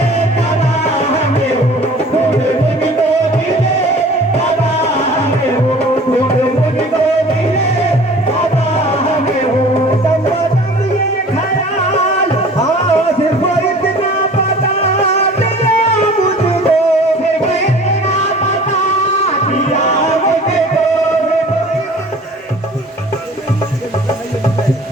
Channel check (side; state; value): both; normal; correlation 0.46